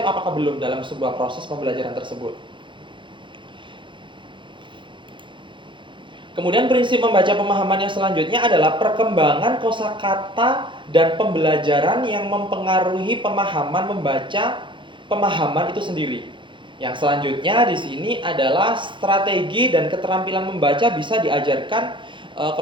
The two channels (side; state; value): left; late; 0.23 ms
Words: apakah belum dalam sebuah proses pembelajaran tersebut? Kemudian prinsip membaca pemahaman yang selanjutnya adalah perkembangan kosakata dan pembelajaran yang mempengaruhi pemahaman membaca pemahaman itu sendiri. Yang selanjutnya di sini adalah strategi dan keterampilan membaca bisa diajarkan